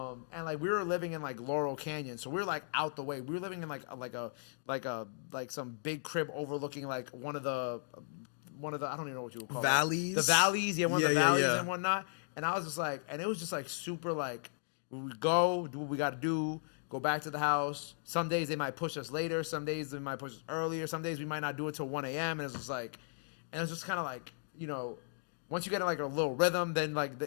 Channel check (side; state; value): right; silent; digital silence